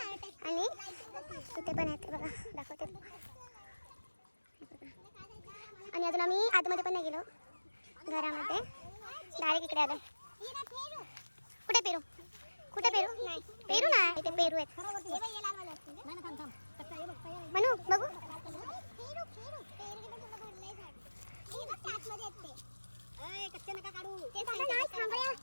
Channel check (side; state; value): both; inverted; correlation -1.00